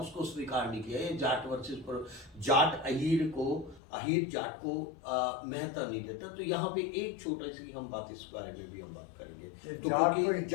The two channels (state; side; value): drops out; right; at 3.8 s